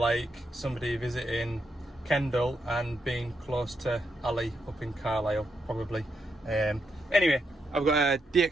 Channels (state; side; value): normal; both; correlation 0.81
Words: somebody visiting Kendal and being close to Ali up in Carlisle, probably. Anyway, I've got a